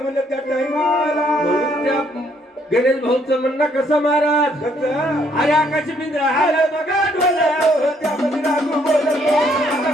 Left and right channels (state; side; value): normal; both; correlation 0.68